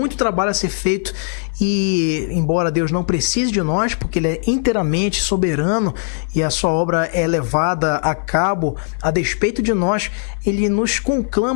trabalho a ser feito. E embora Deus não precise de nós, porque Ele é inteiramente soberano e a sua obra é levada a cabo a despeito de nós, Ele nos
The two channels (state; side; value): silent; right; 55 dB below the other